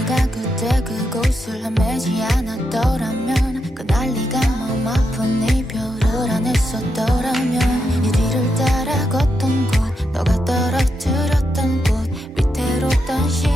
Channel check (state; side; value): normal; both; correlation 0.83